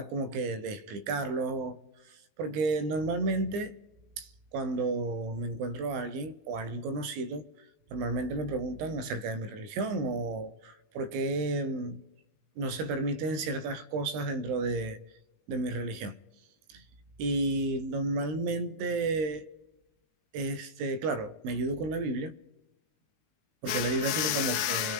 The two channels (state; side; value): late; left; 19 ms